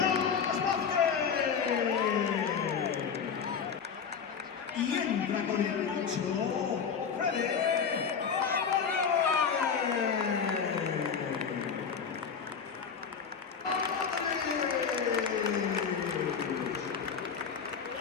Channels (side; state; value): right; quieter; 6.5 dB